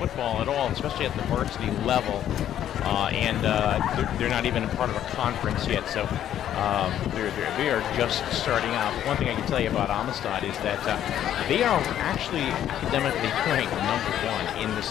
at all, especially at the varsity level, and they're not even a part of a conference yet, so they are just starting out. But one thing I can tell you about Amistad is that they are actually academically ranked #1 in the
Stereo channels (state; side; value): quieter; right; 11.0 dB